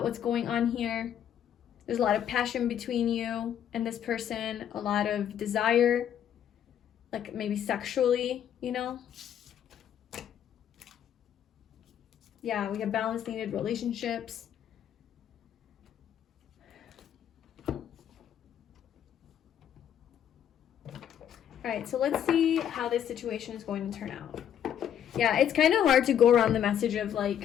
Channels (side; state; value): right; quieter; 9.7 dB